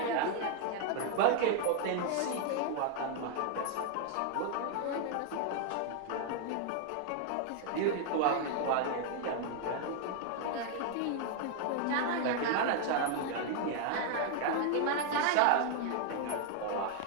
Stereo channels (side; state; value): both; different; correlation 0.00